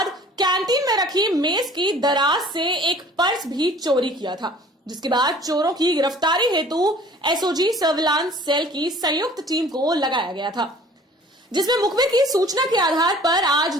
कैंटीन में रखी मेज की दराज से एक पर्स भी चोरी किया था, जिसके बाद चोरों की गिरफ्तारी हेतु एसओजी सर्विलांस सेल की संयुक्त टीम को लगाया गया था, जिसमें मुखबिर की सूचना के आधार पर आज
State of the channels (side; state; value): both; normal; correlation 0.50